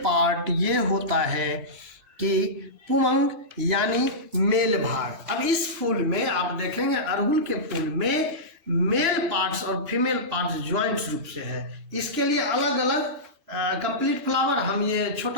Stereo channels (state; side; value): late; left; 2.0 ms